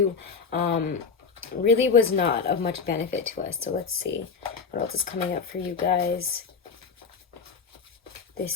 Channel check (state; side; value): quieter; right; 5.5 dB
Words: really was not of much benefit to us. So let's see what else is coming up for you guys this